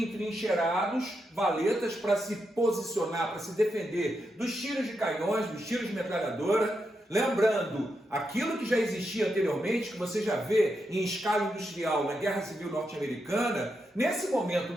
valetas para se posicionar, para se defender dos tiros de canhões, dos tiros de metralhadora. Lembrando, aquilo que já existia anteriormente, que você já vê em escala industrial na Guerra Civil Norte-Americana, nesse momento,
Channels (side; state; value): both; normal; correlation 0.84